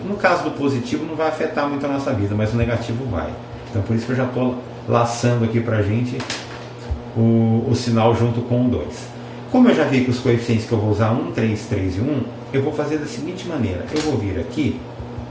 No caso do positivo não vai afetar muito a nossa vida, mas o negativo vai. Então por isso que eu já estou laçando aqui pra gente o sinal junto com o 2. Como eu já vi que os coeficientes que eu vou usar 1, 3, 3 e 1, eu vou fazer da seguinte maneira. Eu vou vir aqui,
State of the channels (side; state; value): both; identical; correlation 1.00